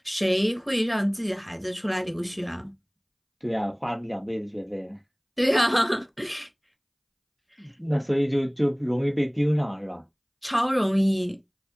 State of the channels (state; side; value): identical; both; correlation 1.00